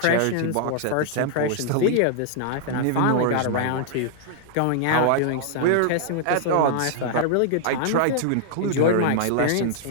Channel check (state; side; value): different; both; correlation -0.01